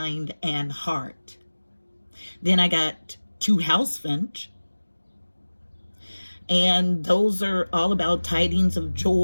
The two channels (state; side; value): inverted; both; correlation -1.00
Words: and heart. Then I got two house finch, and those are all about tidings of